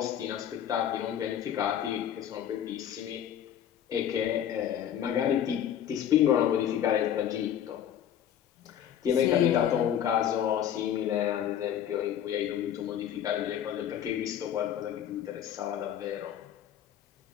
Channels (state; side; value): quieter; right; 10.0 dB